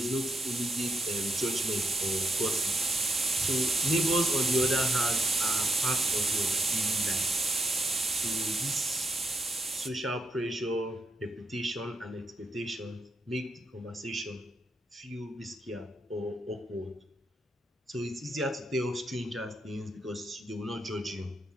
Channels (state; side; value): normal; both; correlation 0.80